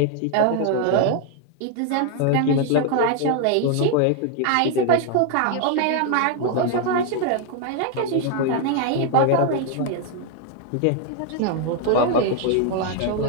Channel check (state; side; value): different; both; correlation 0.00